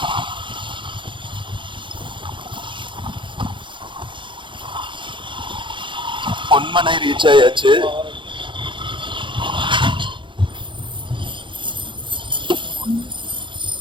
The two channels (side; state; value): left; late; 0.24 ms